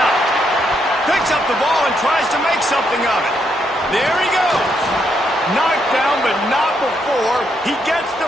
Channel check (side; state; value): both; normal; correlation 0.77